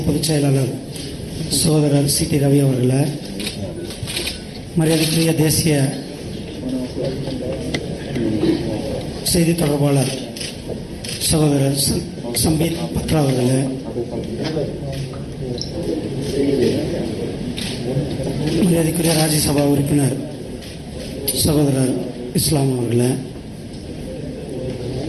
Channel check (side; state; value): both; identical; correlation 1.00